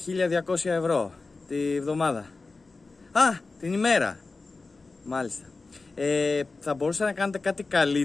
1.200 ευρώ τη εβδομάδα. Την ημέρα. Μάλιστα. Θα μπορούσατε να κάνετε κάτι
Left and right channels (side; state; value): right; quieter; 3.8 dB